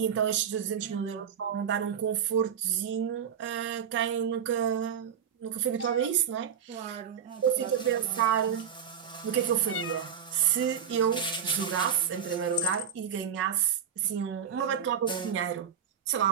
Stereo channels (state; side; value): quieter; left; 8.0 dB